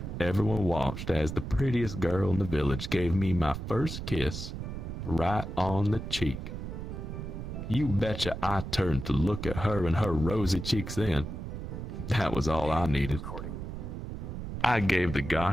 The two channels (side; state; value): right; noise; rumble, 7 dB below the sound